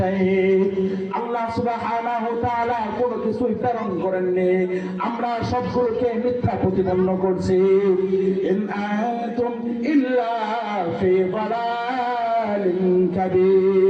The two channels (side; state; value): both; identical; correlation 1.00